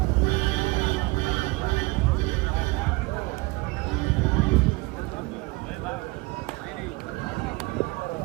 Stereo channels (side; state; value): left; quieter; 23.7 dB